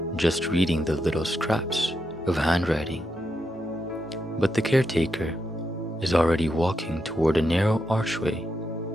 just reading the little scraps of handwriting. But the caretaker is already walking toward a narrow archway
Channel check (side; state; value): both; normal; correlation 0.84